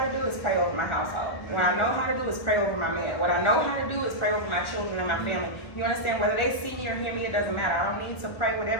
to do is pray over my household. What I know how to do is pray over my man. What I know how to do is pray over my children and my family. You understand? Whether they see me or hear me, it doesn't matter. I don't need to pray with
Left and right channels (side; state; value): right; late; 1.2 ms